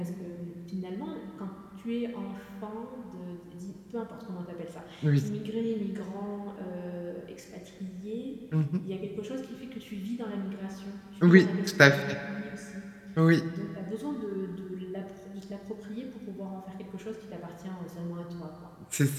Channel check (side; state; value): both; identical; correlation 1.00